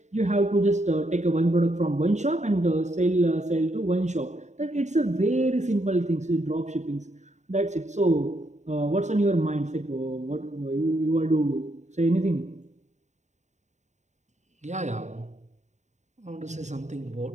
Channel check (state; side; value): late; left; 0.34 ms